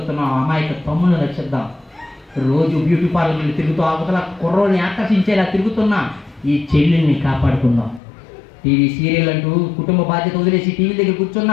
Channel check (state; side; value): drops out; right; at 8.0 s